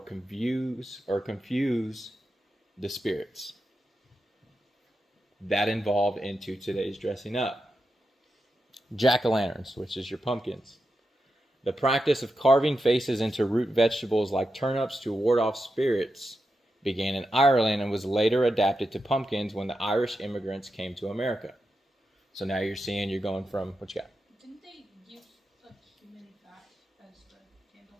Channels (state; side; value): normal; both; correlation 0.88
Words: the spirits. That involved into today's dressing up. Jack-o'-lanterns, which is your pumpkins. The practice of carving faces into root vegetables like turnips to ward off spirits began in Ireland and was later adapted to pumpkins when the Irish immigrants came to America. So now you're going from, what you got? Didn't they use like human fat as the